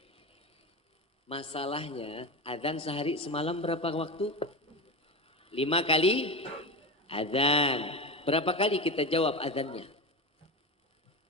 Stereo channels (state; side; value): normal; both; correlation 0.23